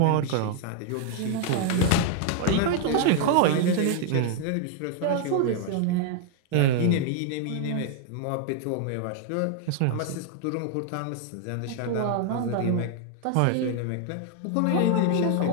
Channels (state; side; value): different; both; correlation 0.00